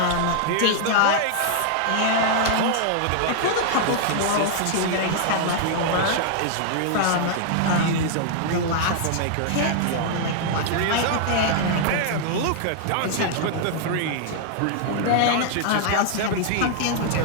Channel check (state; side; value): different; both; correlation 0.00